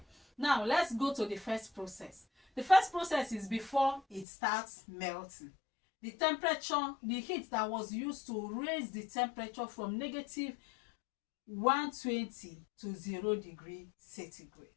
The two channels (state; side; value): drops out; right; at 4.2 s